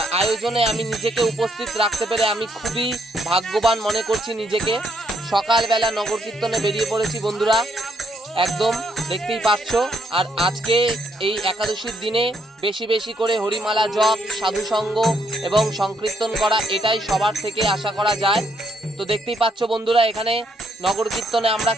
আয়োজনে আমি নিজেকে উপস্থিত রাখতে পেরে আমি খুবই ভাগ্যবান মনে করছি নিজেকে। সকালবেলা নগর কীর্তনে বেরিয়ে পড়েছি বন্ধুরা, একদম দেখতেই পাচ্ছ। আর আজকে এই একাদশীর দিনে বেশি বেশি করে হরিমালা জপ, সাধুসঙ্গ এবং সংকীর্তন করা, এটাই সবার থেকে আশা করা যায়। তো দেখতেই পাচ্ছ বন্ধুরা, এখানে নগর কীর্তনে আমরা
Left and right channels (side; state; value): both; normal; correlation 0.72